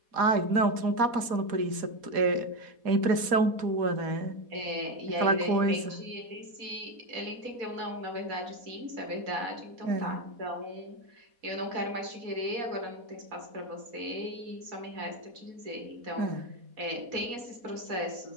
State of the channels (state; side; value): late; left; 4.1 ms